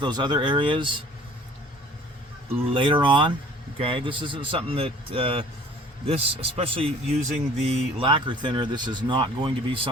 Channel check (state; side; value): normal; both; correlation 0.50